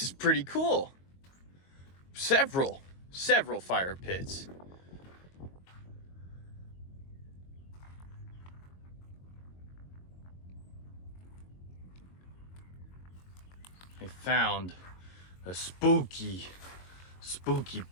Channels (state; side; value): late; right; 22 ms